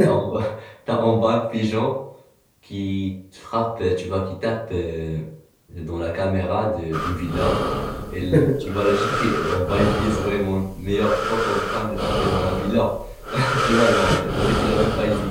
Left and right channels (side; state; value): both; identical; correlation 1.00